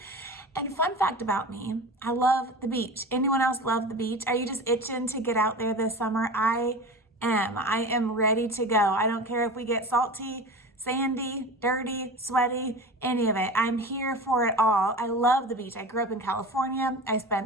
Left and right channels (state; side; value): normal; both; correlation 0.32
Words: And fun fact about me, I love the beach. Anyone else love the beach? Are you just itching to get out there this summer? I am. I am ready to go. I don't care if we get salty, sandy, dirty, sweaty, any of it. I'm here for it all. I love the beach. I grew up in California. I